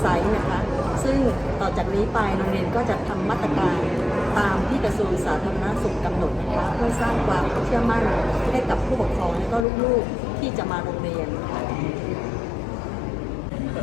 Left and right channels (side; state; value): right; drops out; at 9.7 s